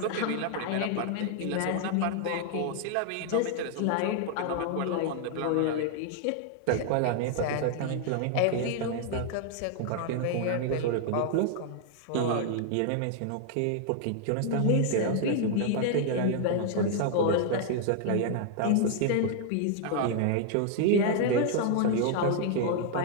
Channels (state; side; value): different; both; correlation 0.00